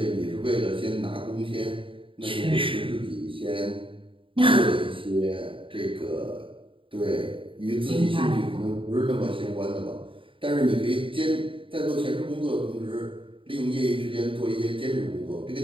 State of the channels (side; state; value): left; late; 0.25 ms